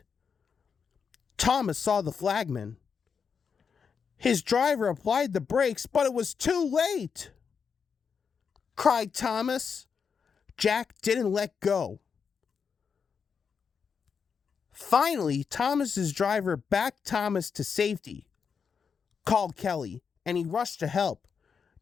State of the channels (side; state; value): right; quieter; 6.2 dB